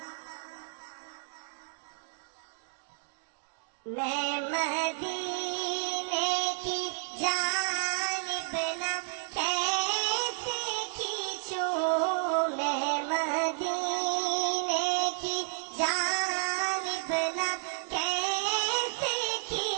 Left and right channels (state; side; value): silent; left; digital silence